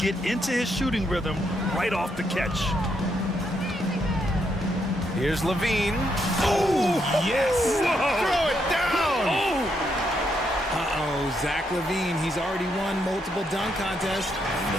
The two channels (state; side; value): normal; both; correlation 0.77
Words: into his shooting rhythm right off the catch. Here's LaVine. Oh, yes! Throw it down! Uh-oh, Zach LaVine, he's already won multiple dunk contests.